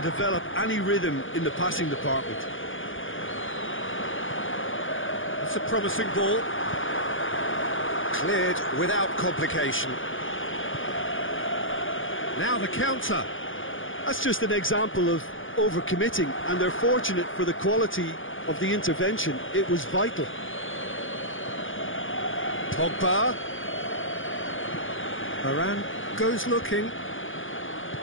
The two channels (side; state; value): right; late; 0.58 ms